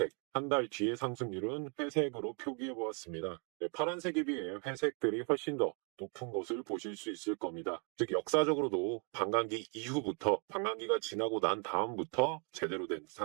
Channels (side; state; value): left; quieter; 37.9 dB